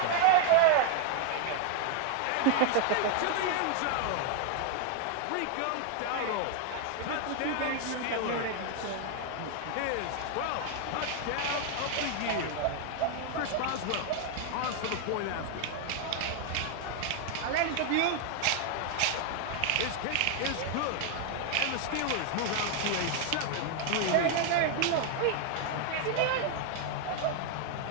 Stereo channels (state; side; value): different; both; correlation 0.00